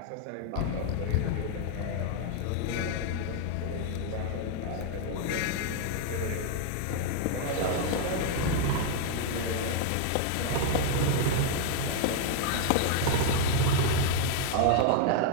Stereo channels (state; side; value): different; both; correlation 0.00